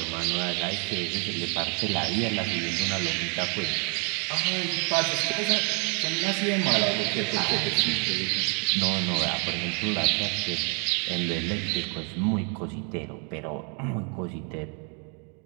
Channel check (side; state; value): left; quieter; 37.4 dB